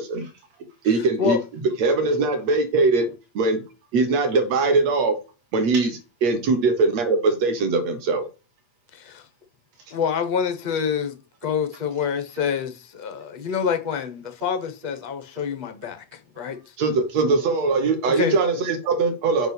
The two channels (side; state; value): left; late; 8.4 ms